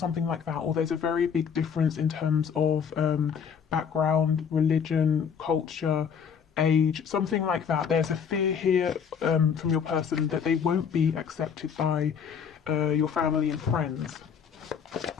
like that, or there's a very big difference in terms of background, religion, culture, age, something like that. There's a fear here from your person that they won't be accepted by your family and friends.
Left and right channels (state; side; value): quieter; right; 7.1 dB